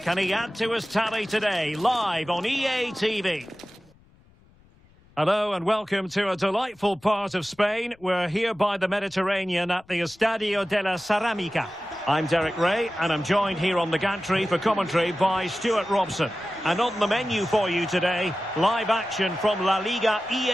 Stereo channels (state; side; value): noise; left; rumble, 29 dB below the sound